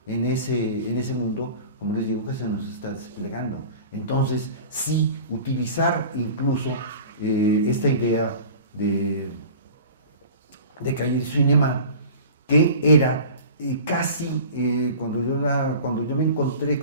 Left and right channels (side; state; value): both; inverted; correlation -0.39